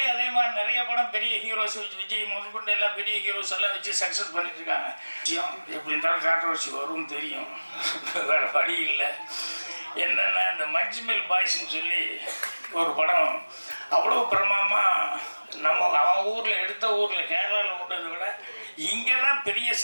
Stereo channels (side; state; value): both; inverted; correlation -1.00